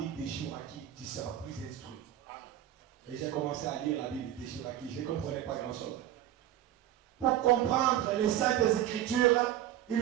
de Chouraki, tu seras plus instruit. Et j'ai commencé à lire la Bible de Chouraki, je ne comprenais pas grand chose. Pour comprendre les saintes écritures, il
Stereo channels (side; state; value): left; quieter; 12.1 dB